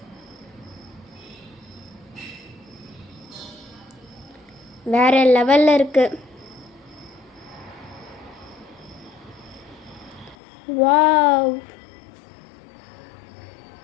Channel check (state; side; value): drops out; right; at 10.4 s